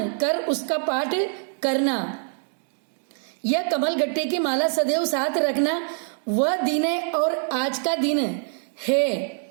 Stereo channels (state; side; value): silent; left; 62 dB below the other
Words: कर उसका पाठ करना। यह कमल गट्टे की माला सदैव साथ रखना। वह दिन है और आज का दिन है।